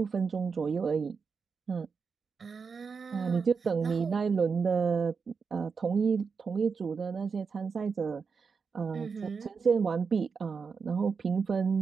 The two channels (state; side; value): quieter; left; 5.4 dB